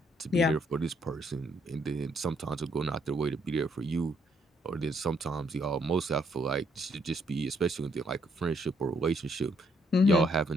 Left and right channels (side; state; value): both; normal; correlation 0.71